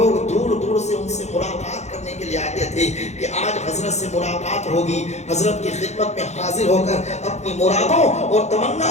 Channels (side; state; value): right; late; 0.33 ms